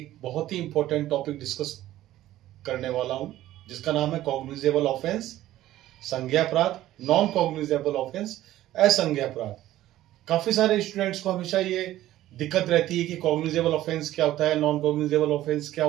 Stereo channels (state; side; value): quieter; left; 14.3 dB